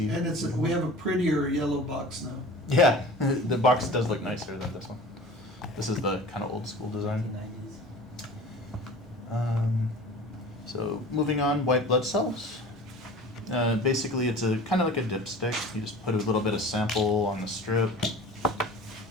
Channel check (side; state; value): both; normal; correlation 0.40